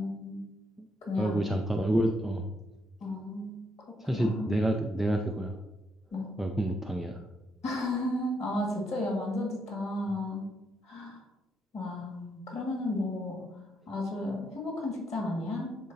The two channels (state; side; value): normal; both; correlation 0.77